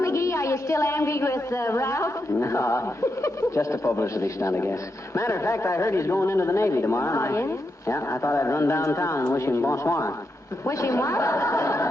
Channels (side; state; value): both; normal; correlation 0.85